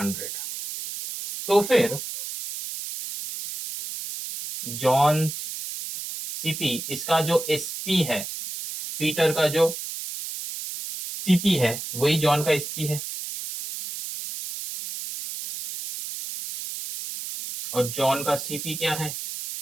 तो फिर जॉन्स सीपी, इसका जो एसपी है, पीटर का जो सीपी है वही जॉन का एसपी है, और जॉन का सीपी क्या है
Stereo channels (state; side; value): noise; right; hiss, 7 dB below the sound